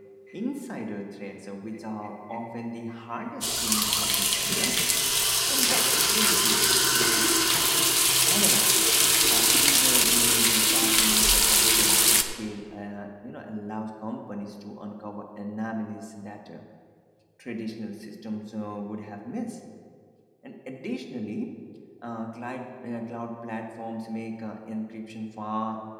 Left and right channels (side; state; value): both; identical; correlation 1.00